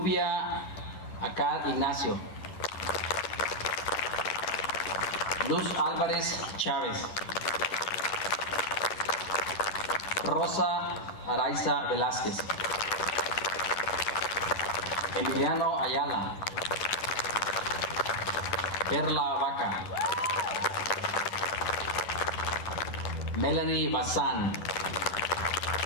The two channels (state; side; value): late; right; 10 ms